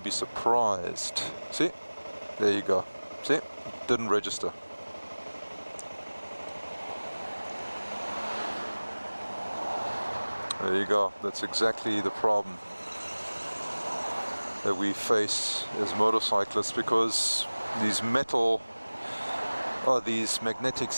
be surprised. See? There you go. See? Didn't register. There you go. That's exactly the problem that we face as motorcyclists, because these magnetic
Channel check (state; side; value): inverted; both; correlation -1.00